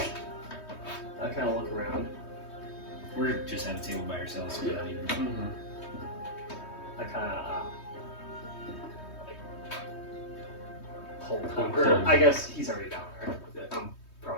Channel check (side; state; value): right; late; 3.2 ms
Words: I kind of look around. We're just at a table by ourselves. So we're not even. I kind of pull Tom. Pull Or him. I guess he's already down there. I'm